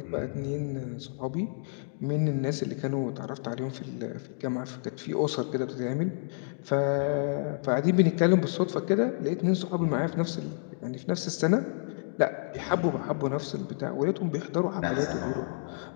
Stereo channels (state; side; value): silent; right; digital silence